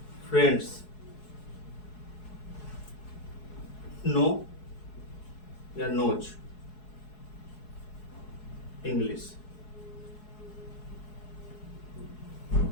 friends know या knows English.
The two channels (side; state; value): right; late; 4.7 ms